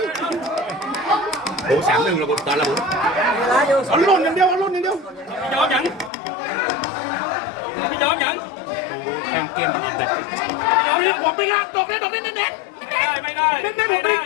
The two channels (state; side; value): drops out; right; at 6.1 s